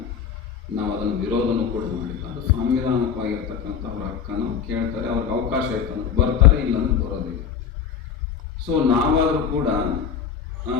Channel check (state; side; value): quieter; right; 7.3 dB